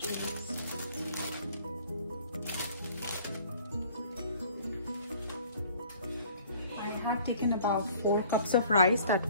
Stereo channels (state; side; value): inverted; both; correlation -0.53